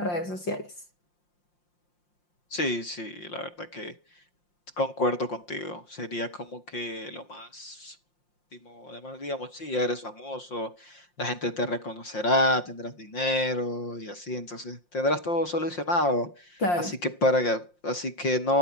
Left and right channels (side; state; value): right; late; 5.7 ms